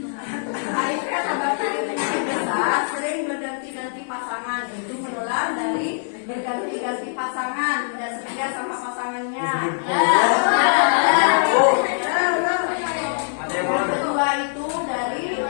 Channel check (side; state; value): right; silent; 58 dB below the other